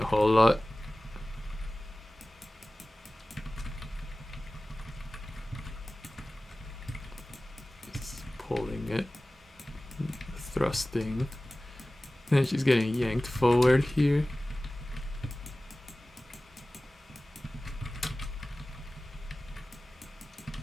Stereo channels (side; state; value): both; normal; correlation 0.97